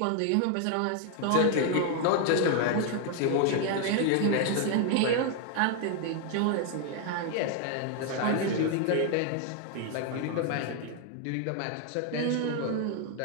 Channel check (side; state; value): both; different; correlation 0.00